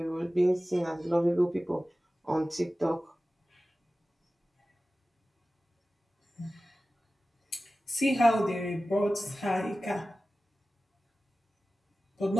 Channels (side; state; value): both; normal; correlation 0.96